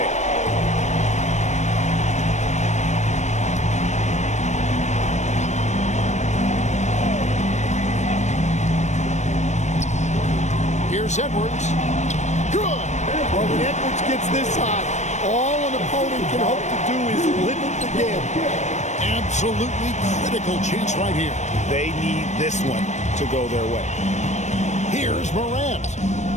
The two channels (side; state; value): right; late; 0.34 ms